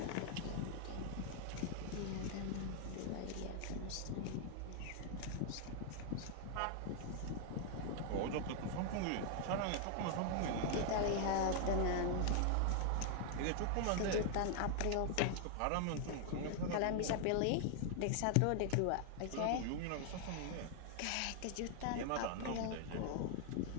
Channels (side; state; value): both; different; correlation 0.00